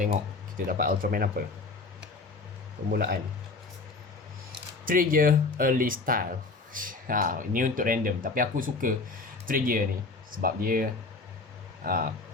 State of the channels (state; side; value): quieter; right; 3.8 dB